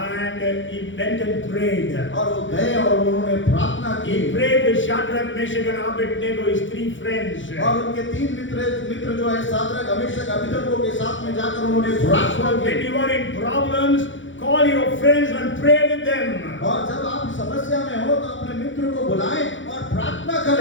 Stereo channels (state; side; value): late; right; 0.56 ms